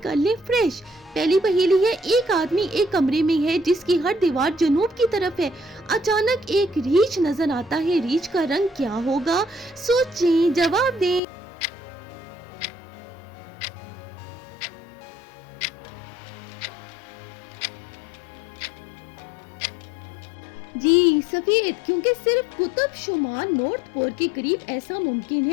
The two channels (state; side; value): drops out; right; at 11.2 s